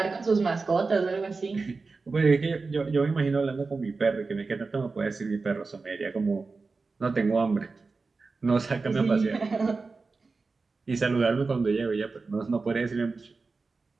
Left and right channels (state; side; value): quieter; left; 4.1 dB